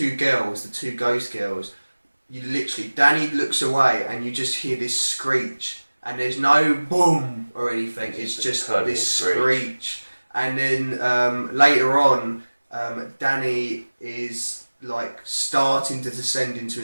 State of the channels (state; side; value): inverted; both; correlation -1.00